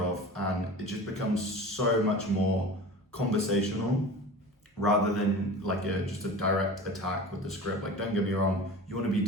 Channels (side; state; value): both; normal; correlation 0.35